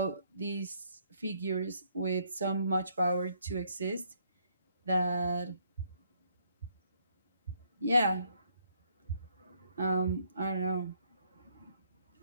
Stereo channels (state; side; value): inverted; both; correlation -0.69